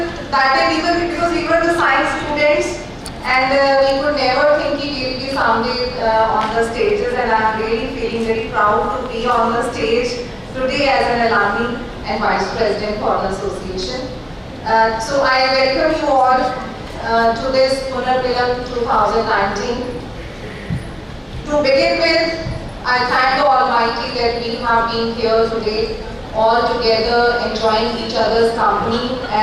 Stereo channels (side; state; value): both; identical; correlation 1.00